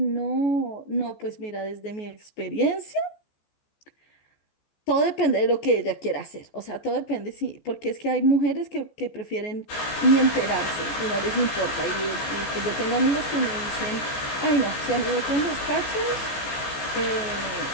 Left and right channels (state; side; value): late; right; 14 ms